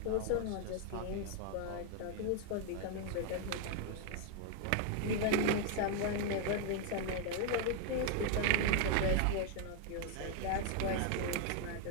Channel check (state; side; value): different; both; correlation 0.00